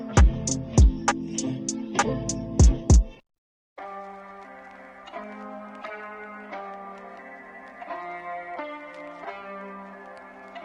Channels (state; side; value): identical; both; correlation 1.00